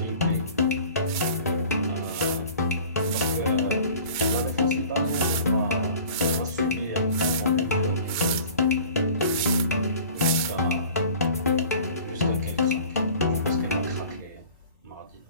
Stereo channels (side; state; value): both; inverted; correlation -0.45